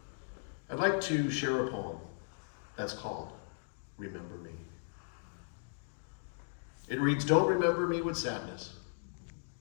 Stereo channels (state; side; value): silent; right; digital silence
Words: I'd like to share a poem that's called Remember Me. It reads, don't remember me with sadness,